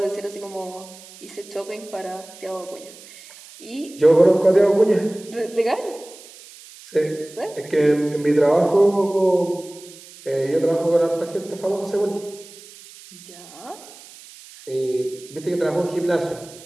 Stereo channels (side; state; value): right; noise; hiss, 20 dB below the sound